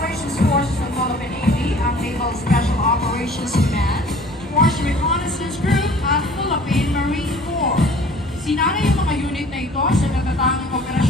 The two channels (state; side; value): normal; both; correlation 0.50